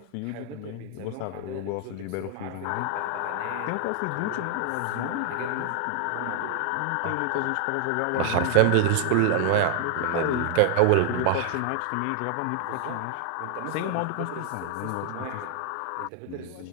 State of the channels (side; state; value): both; different; correlation 0.00